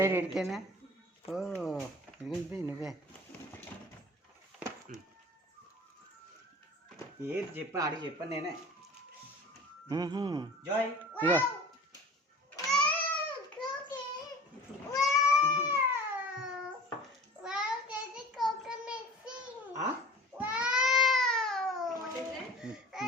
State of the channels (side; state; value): both; normal; correlation 0.41